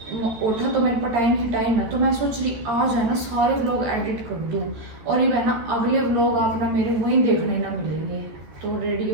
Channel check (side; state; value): left; late; 13 ms